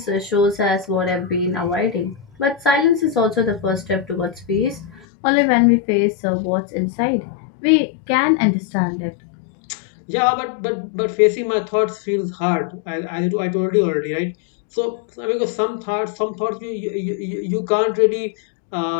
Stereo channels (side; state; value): right; drops out; at 5.1 s